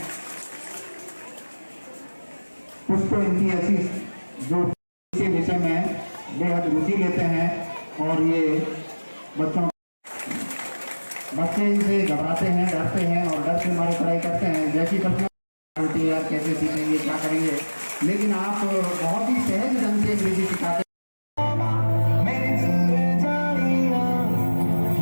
कुछ तो इनकी ऐसी जो के विषय में बेहद रुचि लेते हैं और ये बच्चे इनसे घबराते हैं, डरते हैं और डर से हमारी पढ़ाई करते हैं। जैसी प्रश्न होती है यार कैसे सीखेंगे, क्या करेंगे, लेकिन आप बहुत ही सहज ढंग से अंग्रेजी सिखाते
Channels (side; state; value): both; inverted; correlation -1.00